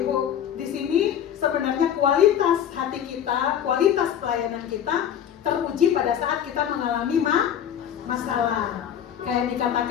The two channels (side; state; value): right; quieter; 9.5 dB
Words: di sini sebenarnya kualitas hati kita, kualitas pelayanan kita teruji pada saat kita mengalami masalah. Kayak